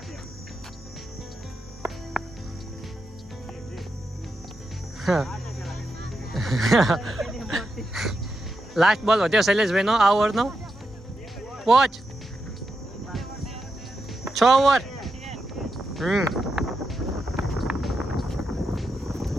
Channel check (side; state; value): both; normal; correlation 0.86